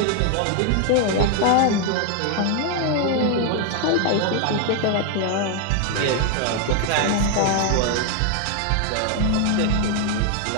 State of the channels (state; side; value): different; both; correlation 0.01